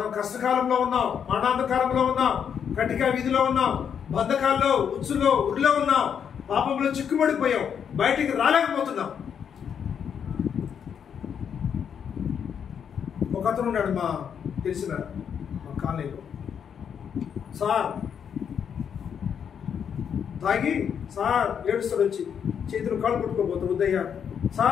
కష్టకాలంలో ఉన్నాం, మరణాంధకారంలో ఉన్నాం, కటిక విధిలో ఉన్నాం, బంధకాల్లో ఉచ్చులో ఉరిలో ఉన్నాం, పాపంలో చిక్కుబడిపోయాం, బయటికి రాలేకపోతున్నాం. ఒక అతను ఉన్నాడు మా తెలిసిన మా కాలనీలో. సార్ తాగి సార్ ఏడుస్తాడు, వచ్చి చేతులు కాళ్ళు కొట్టుకోబోతాడు. ఉదయ్య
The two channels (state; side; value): quieter; right; 7.8 dB